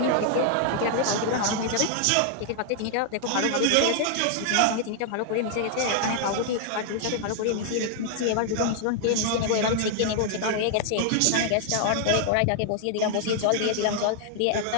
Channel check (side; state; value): both; different; correlation -0.01